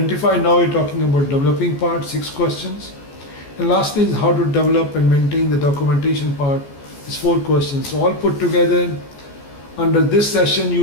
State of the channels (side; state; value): right; late; 14 ms